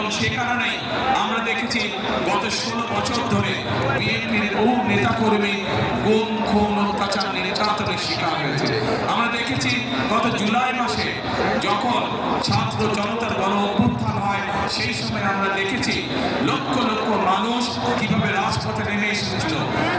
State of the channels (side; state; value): both; identical; correlation 1.00